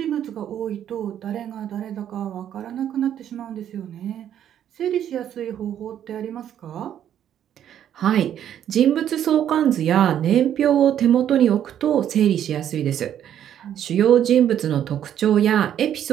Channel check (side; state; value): left; quieter; 10.2 dB